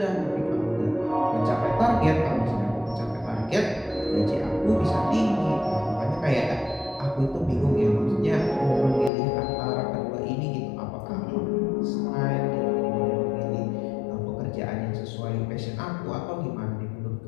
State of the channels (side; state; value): right; drops out; at 9.1 s